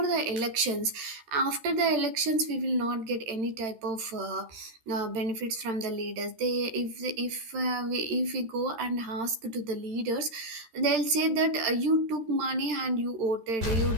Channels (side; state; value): left; late; 13 ms